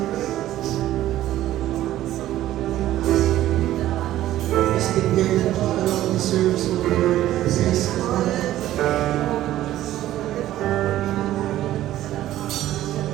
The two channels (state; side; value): quieter; left; 13.8 dB